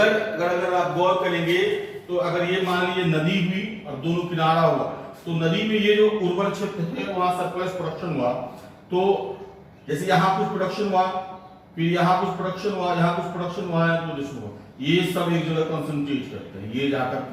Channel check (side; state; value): both; identical; correlation 1.00